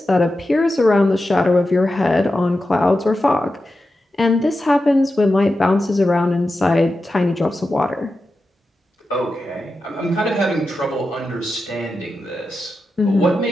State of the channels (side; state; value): both; normal; correlation 0.91